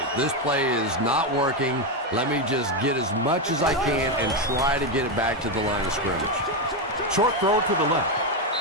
this play is not working. Let me just get as much as I can and try to get it back to the line of scrimmage. Short throw to the left.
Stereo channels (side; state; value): both; normal; correlation 0.08